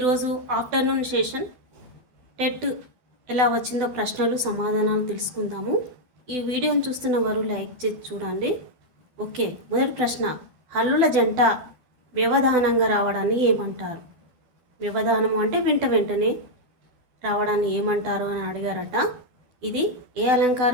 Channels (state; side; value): late; left; 12 ms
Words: ఆఫ్టర్నూన్ సెషన్ టెట్ ఎలా వచ్చిందో ప్రశ్నలు సమాధానాలు తెలుసుకుందాము. ఈ వీడియోని చూస్తున్న వారు లైక్ చేసి చూడండి. ఓకే, మొదటి ప్రశ్న, హల్లుల జంట వ్యవధానంగా రావడాన్ని ఏమంటారు? వ్యవధానము అంటే వెంటనే రావడాన్ని ఏమంటారు అని అడిగారట. ఇది ఏ